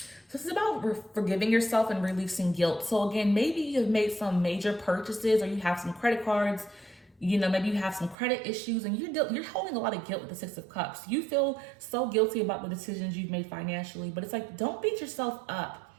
So this is about forgiving yourself and releasing guilt. So again, maybe you've made some major purchases, or you have some credit cards, maybe you have some credit issues, and you're holding a lot of guilt with the Six of Cups. You feel so guilty about the decisions you've made financially, but it's like, don't beat yourself up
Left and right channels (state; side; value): drops out; left; at 8.2 s